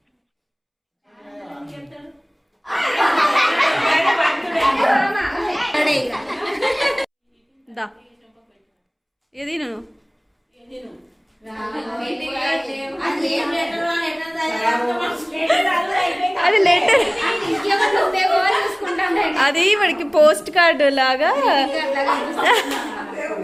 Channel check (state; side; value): identical; both; correlation 1.00